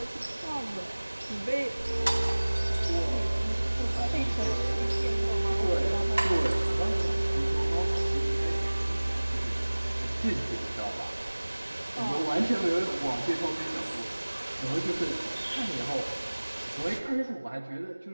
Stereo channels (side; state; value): both; inverted; correlation -1.00